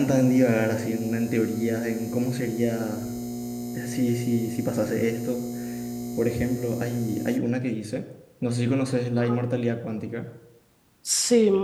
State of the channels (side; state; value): both; identical; correlation 1.00